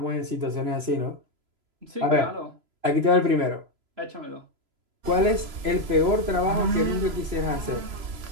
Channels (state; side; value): late; left; 3.0 ms